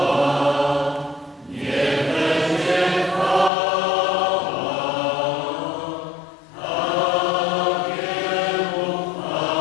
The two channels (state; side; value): drops out; right; at 3.5 s